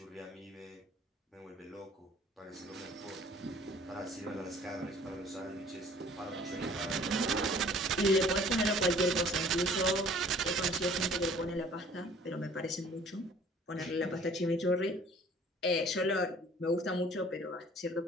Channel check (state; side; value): normal; both; correlation 0.53